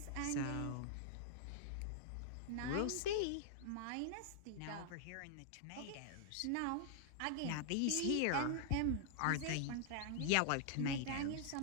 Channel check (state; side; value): different; both; correlation -0.01